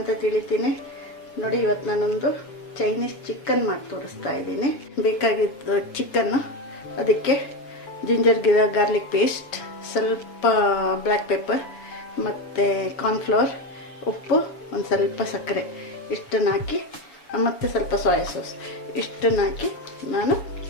ತಿಳಿತೀನಿ. ನೋಡಿ, ಇವತ್ತು ನಾನೊಂದು ಚೈನೀಸ್ ಚಿಕನ್ ಮಾಡಿ ತೋರಿಸ್ತಾ ಇದ್ದೀನಿ. ಬೇಕಾಗಿದ್ದು ಚಿಕನ್ನು, ಅದಕ್ಕೆ ಜಿಂಜರ್ ಗಾರ್ಲಿಕ್ ಪೇಸ್ಟ್, ಸ್ವಲ್ಪ ಬ್ಲ್ಯಾಕ್ ಪೆಪ್ಪರ್ ಮತ್ತು ಕಾರ್ನ್ಫ್ಲವರ್, ಉಪ್ಪು, ಒಂದು ಸ್ವಲ್ಪ ಸಕ್ಕರೆ ಇಷ್ಟನ್ನು ಹಾಕಿ, ಮತ್ತು ಸ್ವಲ್ಪ ಸೋಯಾ ಸಾಸ್ ಇಷ್ಟನ್ನು ಹಾಕಿ ನಾನು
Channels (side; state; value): right; late; 7.0 ms